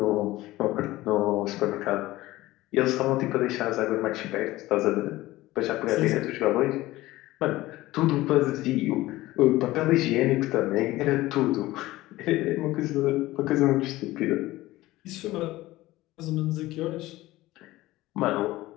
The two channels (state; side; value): quieter; right; 17.6 dB